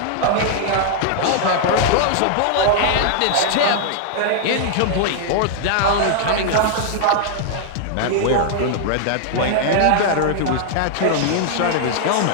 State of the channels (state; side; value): different; both; correlation -0.01